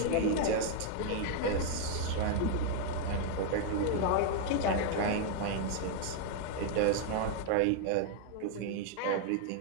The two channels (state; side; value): different; both; correlation 0.00